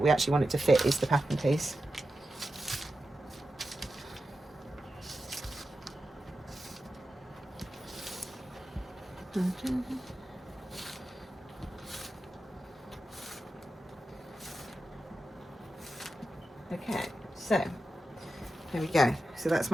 we actually want it to fit, is the pattern piece. Okay, so there we go. So that's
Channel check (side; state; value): both; normal; correlation 0.91